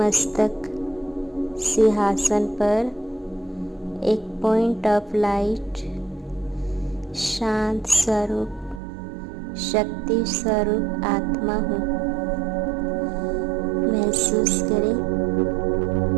सिंहासन पर एक पॉइंट ऑफ लाइट शांत स्वरूप शक्ति स्वरूप आत्मा हूँ। महसूस करें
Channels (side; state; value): left; drops out; at 8.8 s